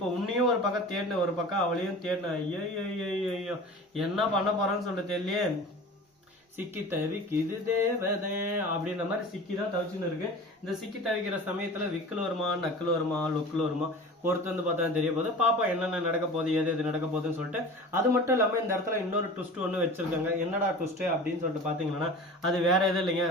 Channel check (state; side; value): normal; both; correlation 0.37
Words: உன்னையும் ஒரு பக்கம் தேடின, ஒரு பக்கம் அவளையும் தேடின. ஐயோ என்ன பண்ண போறான்னு சொல்லிட்டு தெரியலையே. சிக்கி தவிக்குது தேவதே அப்படின்ற மாதிரி சிக்கி தான் தவிச்சுன்னு இருக்கு. இந்த சிக்கி தவிக்கிற சமயத்துல விக்கல் வருமா, நக்கல் வருமா, லுக்கில் வருமா, பொறுத்து வந்து பார்த்தா தெரிய போகுது. பாப்பா என்னென்ன நடக்க போகுது, எது நடக்க போகுதுன்னு சொல்லிட்டு. அது மட்டும் இல்லாம இந்த இடத்துல இன்னொரு ட்விஸ்ட் ஒன்று வச்சிருக்காங்க. என்னடா ட்விஸ்ட் அப்படின்னு சொல்லிட்டு பாத்தீங்கன்னா அது வேற எதுவும் இல்லைங்க,